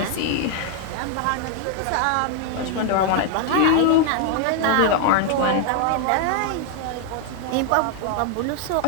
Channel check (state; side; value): different; both; correlation 0.00